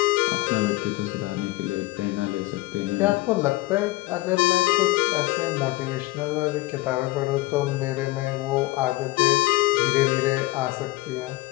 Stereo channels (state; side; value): quieter; right; 19.6 dB